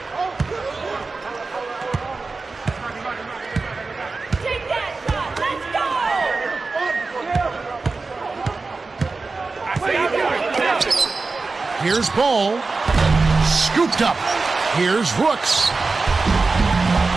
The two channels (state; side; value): quieter; left; 3.9 dB